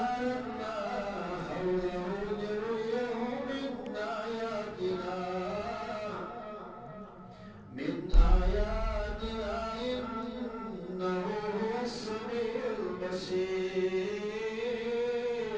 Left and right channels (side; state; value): both; identical; correlation 1.00